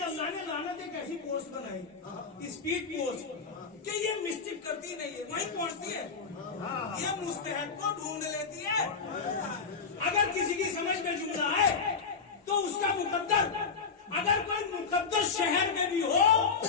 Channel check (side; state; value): right; quieter; 5.3 dB